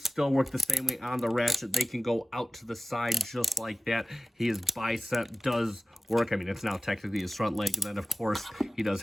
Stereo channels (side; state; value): both; normal; correlation 0.95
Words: still work the same way on the ratchet. They can go out to the side just like that. His bicep does work. I mean, it's now technically his front leg, and then of course he does